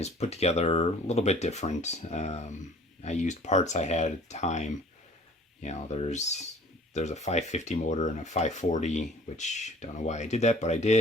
put together a little bit different. I used parts I had at the time. There's a 550 motor and a 540, which I don't know why I did that, but I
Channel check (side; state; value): both; normal; correlation 0.50